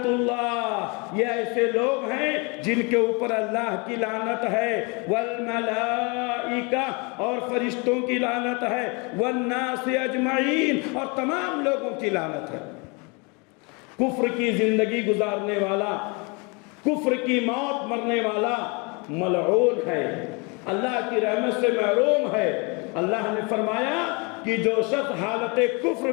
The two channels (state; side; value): quieter; right; 30.7 dB